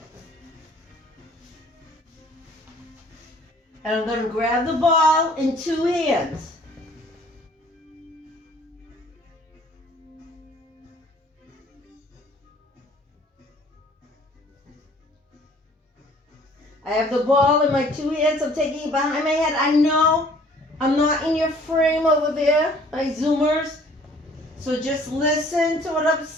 And I'm going to grab the ball in two hands. I have the ball in my two hands. I'm taking it behind my head. I know I'm not in your frame over there, my Zoomers. So just listen to what I'm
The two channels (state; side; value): normal; both; correlation 0.55